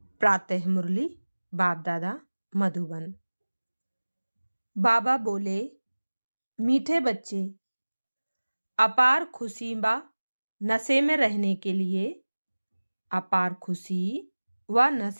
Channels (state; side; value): inverted; both; correlation -1.00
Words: प्रातः मुरली बाप दादा मधुबन। बाबा बोले, मीठे बच्चे, अपार खुशी व नशे में रहने के लिए अपार खुशी व